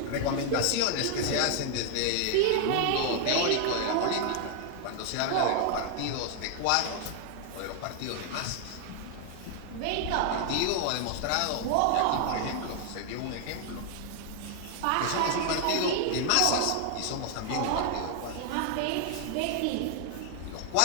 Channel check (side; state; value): both; different; correlation 0.00